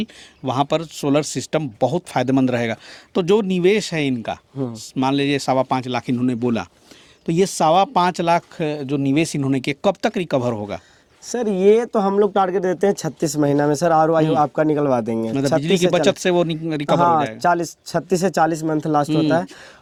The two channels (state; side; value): identical; both; correlation 1.00